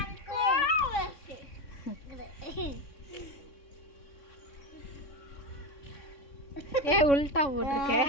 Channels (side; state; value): right; late; 3.6 ms